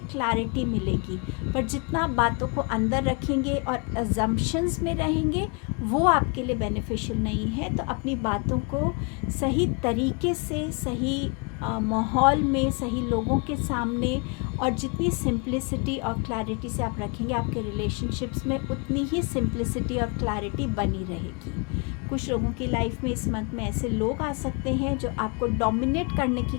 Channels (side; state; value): right; quieter; 33.3 dB